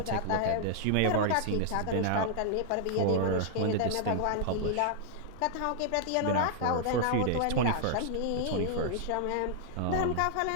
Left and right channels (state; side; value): different; both; correlation -0.01